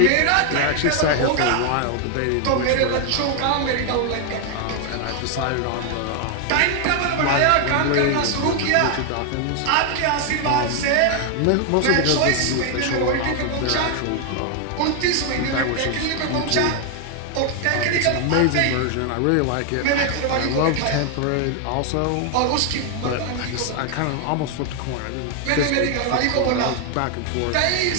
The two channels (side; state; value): both; different; correlation 0.00